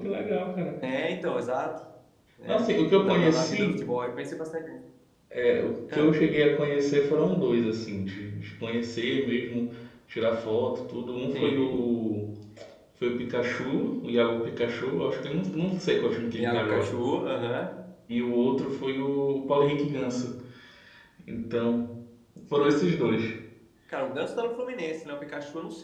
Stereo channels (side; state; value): both; identical; correlation 1.00